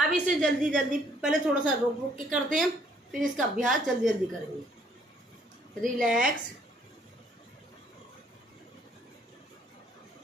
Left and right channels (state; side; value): normal; both; correlation 0.64